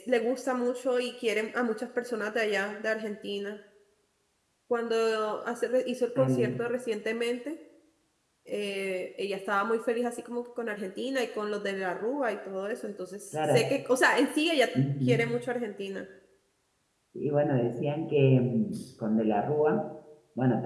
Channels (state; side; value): identical; both; correlation 1.00